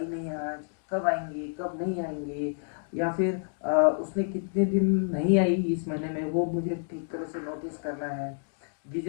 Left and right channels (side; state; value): right; silent; digital silence